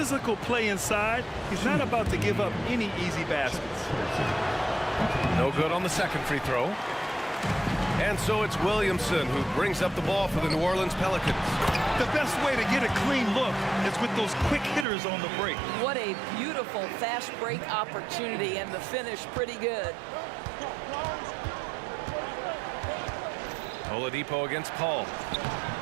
play inside. He's not about to give up any easy baskets. No good on the second free throw. And so it's Williamson who brings up the ball for the New Orleans Pelicans. The best way to get a clean look is with those quick hitters on the break. What a beautiful fast break opportunity, and the finish pretty good. Oladipo against Paul.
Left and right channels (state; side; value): drops out; left; at 14.9 s